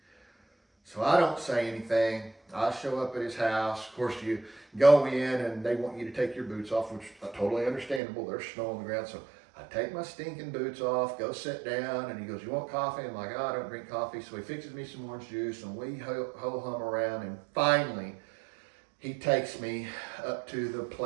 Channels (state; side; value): drops out; left; at 8.0 s